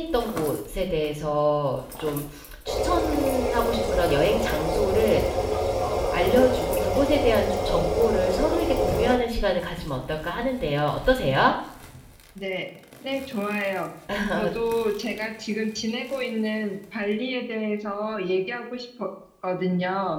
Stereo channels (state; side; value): identical; both; correlation 1.00